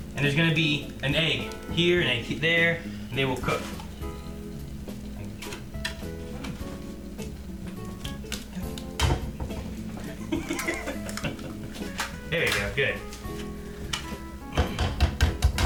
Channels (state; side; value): identical; both; correlation 1.00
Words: and there's gonna be an egg here and an egg there, and they will cook. There you go, good.